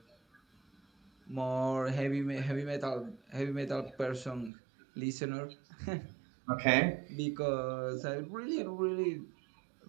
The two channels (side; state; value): left; drops out; at 4.5 s